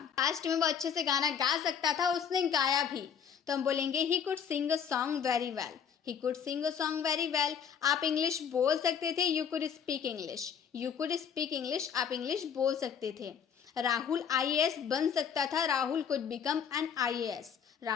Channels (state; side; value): quieter; right; 7.6 dB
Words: पास्ट में वो अच्छे से गाना गा सकता था, उसने गाया भी, तो हम बोलेंगे he could sing a song very well. He could sing a song very well. आप इंग्लिश बोल सकते थे, you could speak English. You could speak English. आप इंग्लिश बोल सकते थे। राहुल IAS बन सकता था, Rahul could become an IAS.